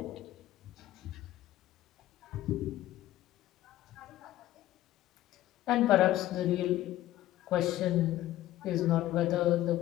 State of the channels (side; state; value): right; quieter; 14.6 dB